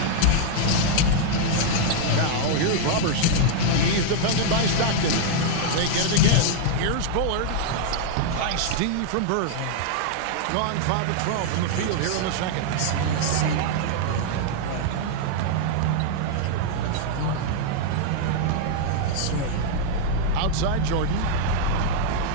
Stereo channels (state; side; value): different; both; correlation -0.01